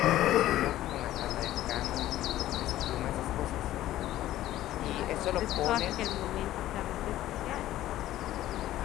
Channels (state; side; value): quieter; right; 14.1 dB